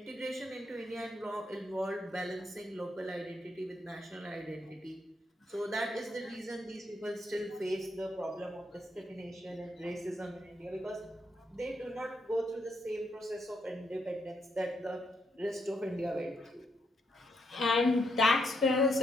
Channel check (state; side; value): normal; both; correlation 0.78